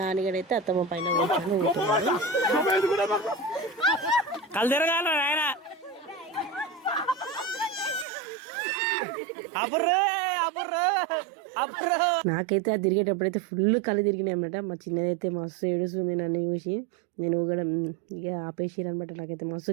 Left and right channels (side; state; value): left; drops out; at 8.1 s